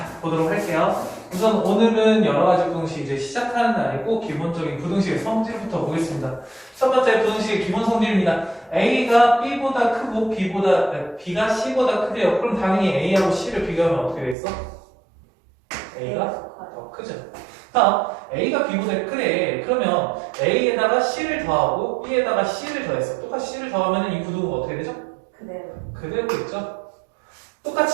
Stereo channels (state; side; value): drops out; left; at 14.4 s